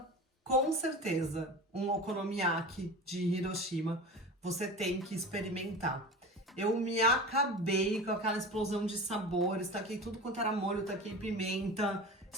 um okonomiyaki de Hiroshima você tem que experimentar. Eu me acabei com aquela explosão de sabores, taquei tudo quanto era molho, taquei pimenta,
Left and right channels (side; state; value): both; normal; correlation 0.32